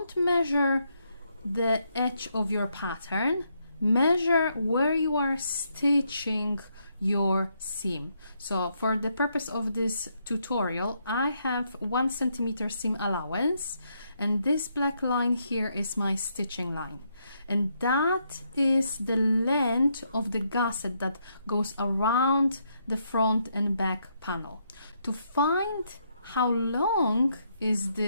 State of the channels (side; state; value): both; inverted; correlation -0.76